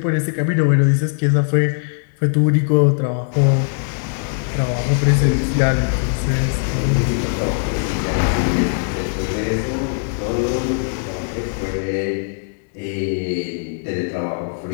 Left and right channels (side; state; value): right; silent; 66 dB below the other